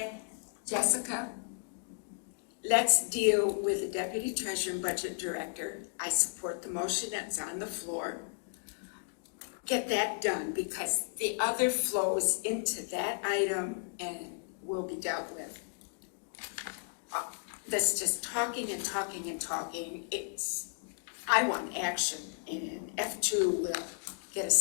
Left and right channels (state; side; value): silent; right; digital silence